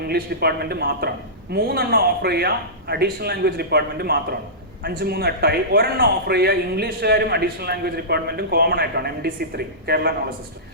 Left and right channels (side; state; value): both; normal; correlation -0.19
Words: ഡിപ്പാർട്ട്മെന്റ് മാത്രമാണ്, 3 ഓഫർ ചെയ്യുക അഡീഷണൽ ലാംഗ്വേജ് ഡിപ്പാർട്ട്മെന്റ് മാത്രമാണ്. 5, 3, 8 ഒരെണ്ണം ഓഫർ ചെയ്യുക ഇംഗ്ലീഷുകാരും അഡീഷണൽ ലാംഗ്വേജ് ഡിപ്പാർട്ട്മെന്റും കോമൺ ആയിട്ടാണ്, MDC 3 കേരള നോളജ് സിസ്റ്റം.